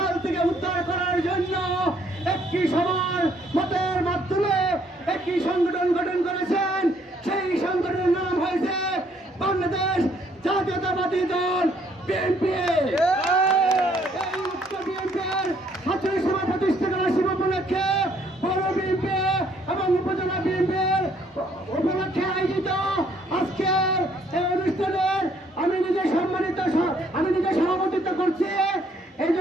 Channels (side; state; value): both; normal; correlation 0.66